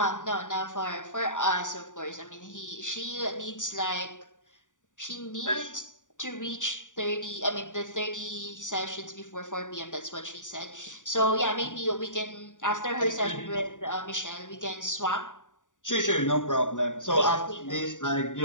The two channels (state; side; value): late; right; 0.87 ms